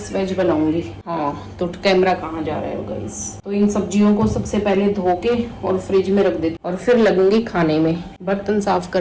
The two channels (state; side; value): identical; both; correlation 1.00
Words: वेज बनाऊंगी। हाँ, तो कैमरा कहाँ जा रहा है गाइस। तो इन सब्जियों को सबसे पहले धो के और फ्रिज में रख देती और फिर लगूंगी खाने में। बर्तन साफ